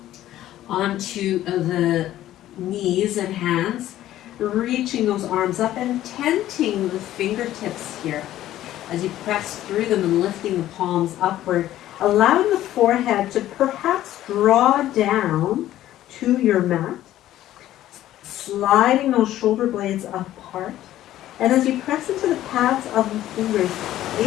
onto the knees and hands, reaching those arms up and tenting the fingertips here as you press through them and lifting the palms upward, allowing the forehead to perhaps draw down to your mat, sliding those shoulder blades apart. And as you press into the pads of the fingers,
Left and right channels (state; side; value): quieter; right; 13.5 dB